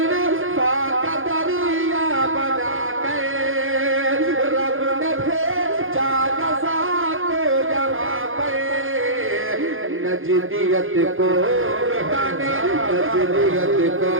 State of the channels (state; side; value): late; left; 0.59 ms